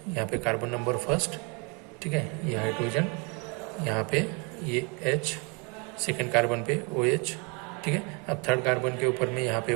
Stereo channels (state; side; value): quieter; left; 32.6 dB